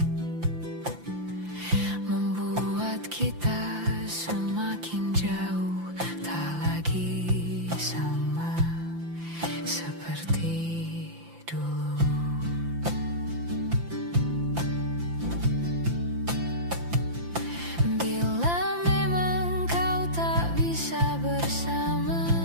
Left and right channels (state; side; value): late; left; 5.8 ms